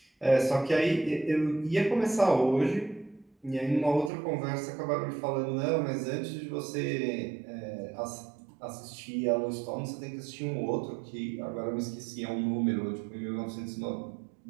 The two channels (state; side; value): drops out; left; at 4.1 s